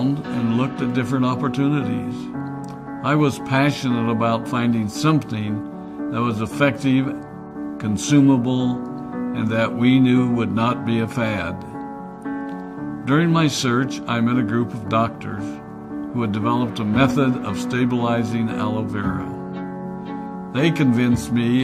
and looked at different opportunities. I was passionate about finding something that was effective, consumable, and that we knew would not be a fad. During my search, I met a group of doctors who had developed a method of stabilizing aloe vera. They convinced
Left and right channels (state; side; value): identical; both; correlation 1.00